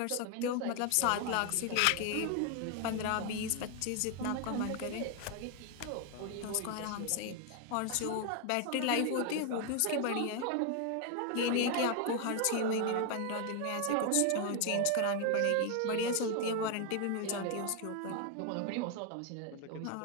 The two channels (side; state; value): both; different; correlation 0.00